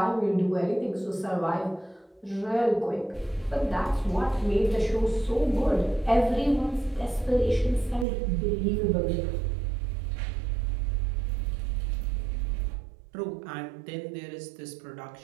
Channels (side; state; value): left; drops out; at 8.1 s